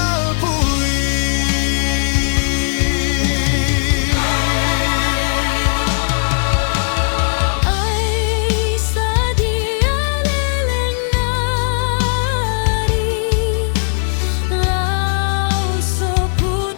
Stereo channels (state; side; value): silent; right; digital silence